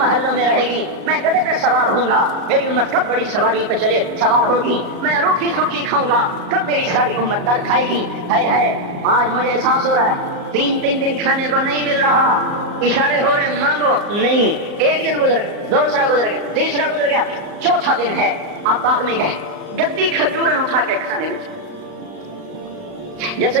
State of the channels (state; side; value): late; left; 35 ms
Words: میں رہے گی, میں گدھے پہ سوار ہوں گا, میری امت کب بڑی سواری پہ چلے سوار ہوگی, میں روکھی سوکھی کھاؤں گا, کب میری ساری امت در کھائے گی. آج مجھے احساس ہو رہا ہے 3 دن کھانے کو نہیں مل رہا, اشارے ہو رہے مانگو نہیں. 1 دن گزر گیا, دوسرا گزر گیا, تیسرا گزر گیا, چوتھا دن ہے, آپ باغ میں گئے, گندی کھجوریں اٹھا کے کھانے میں, جیسے